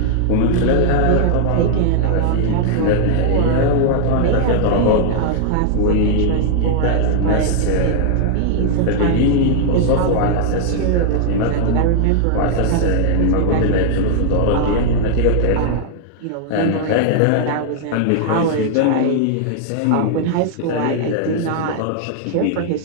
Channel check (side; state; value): both; different; correlation 0.00